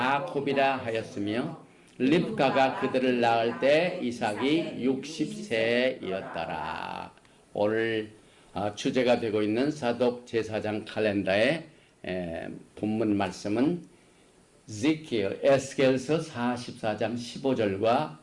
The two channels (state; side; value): identical; both; correlation 1.00